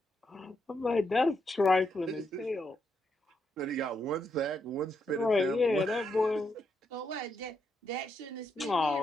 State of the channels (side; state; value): both; normal; correlation 0.80